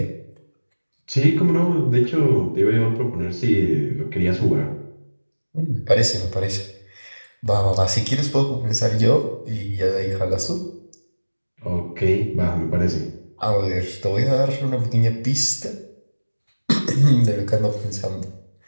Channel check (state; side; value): inverted; both; correlation -1.00